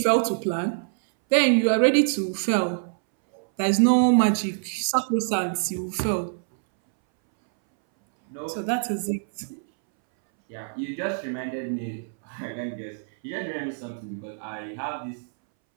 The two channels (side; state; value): left; silent; 62 dB below the other